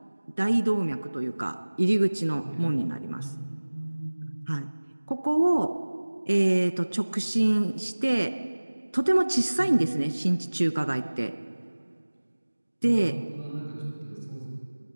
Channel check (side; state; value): both; inverted; correlation -1.00